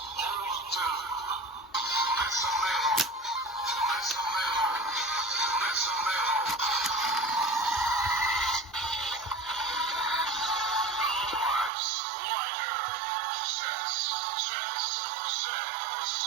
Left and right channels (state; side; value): drops out; left; at 11.7 s